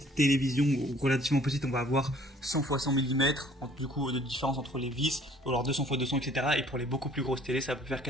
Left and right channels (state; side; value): normal; both; correlation 0.56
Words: télévision relativement petite, on va avoir 100 x 100 mm. Du coup, de différence entre les vis, ou alors 200 x 200, etc. Et pour les beaucoup plus grosses télés, ça peut faire